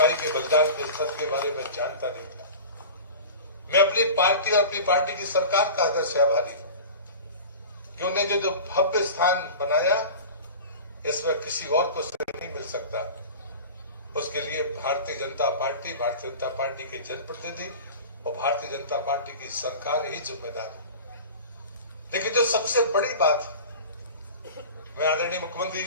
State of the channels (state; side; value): inverted; both; correlation -0.34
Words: के बलिदान के स्तर के बारे में जानता नहीं था। मैं अपनी पार्टी और अपनी पार्टी की सरकार का हृदय से आभारी हूं कि उन्हें जो भव्य स्थान बनाया, इसमें किसी और को श्रेय नहीं मिल सकता। उसके लिए भारतीय जनता पार्टी के जनप्रतिनिधि और भारतीय जनता पार्टी की सरकार ही जिम्मेदार है। लेकिन जो सबसे बड़ी बात, मैं आदरणीय मुख्यमंत्री